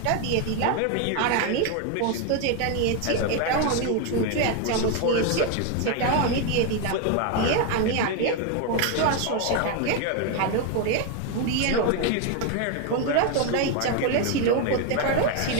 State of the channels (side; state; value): both; different; correlation 0.01